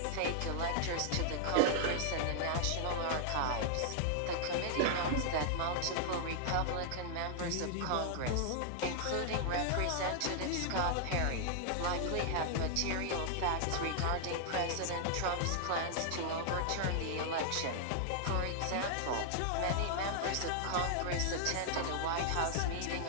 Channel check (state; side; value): different; both; correlation -0.01